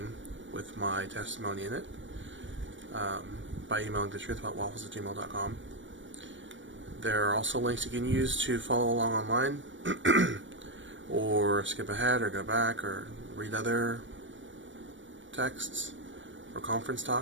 with my testimony in it by emailing thetruthaboutwaffles@gmail.com. There are also links you can use to follow along online or skip ahead or go back or read other texts or conference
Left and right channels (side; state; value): left; late; 0.56 ms